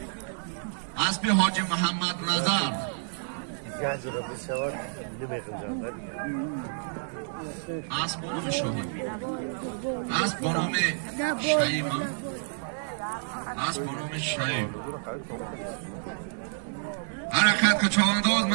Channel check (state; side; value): silent; left; digital silence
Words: اسبی حاجی محمد نظر اسب بانوم شاهی اسب بانوم شهیم اسب بانوم شهیم حرکت که چواندوز